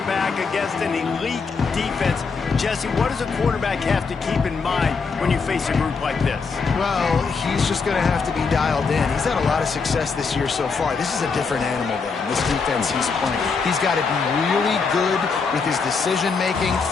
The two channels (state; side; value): quieter; right; 5.0 dB